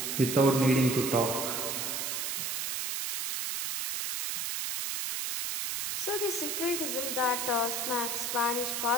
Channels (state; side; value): noise; right; hiss, 2 dB below the sound